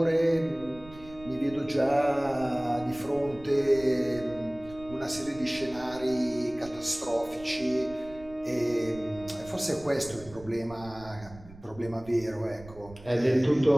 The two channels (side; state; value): right; noise; rumble, 19 dB below the sound